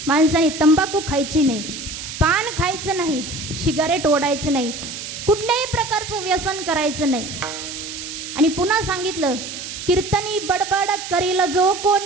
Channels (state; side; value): noise; right; hiss, 9 dB below the sound